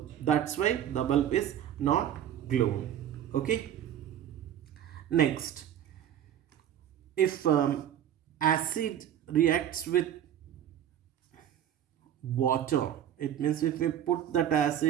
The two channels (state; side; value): quieter; left; 10.5 dB